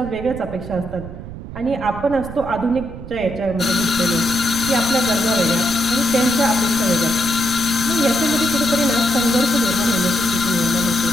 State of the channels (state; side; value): noise; right; rumble, 11 dB below the sound